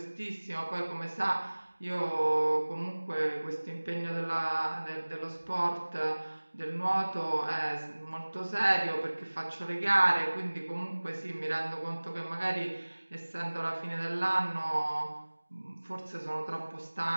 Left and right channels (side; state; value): both; inverted; correlation -1.00